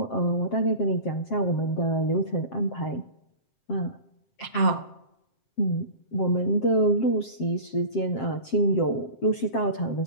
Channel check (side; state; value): right; late; 7.6 ms